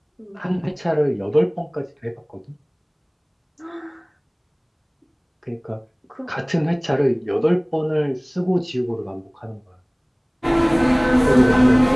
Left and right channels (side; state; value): both; identical; correlation 1.00